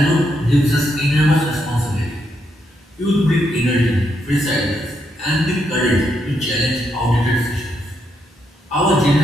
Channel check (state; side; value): normal; both; correlation 0.79